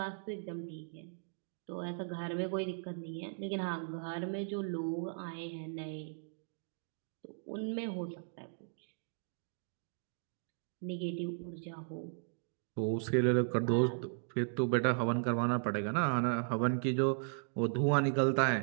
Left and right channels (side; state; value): left; silent; digital silence